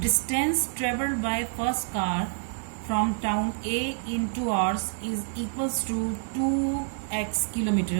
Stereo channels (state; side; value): silent; left; 60 dB below the other